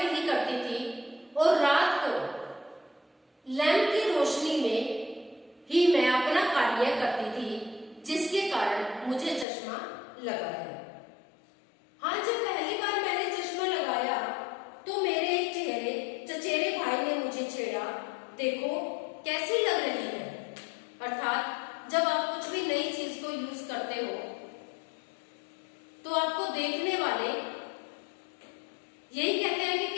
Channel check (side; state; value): right; drops out; at 9.5 s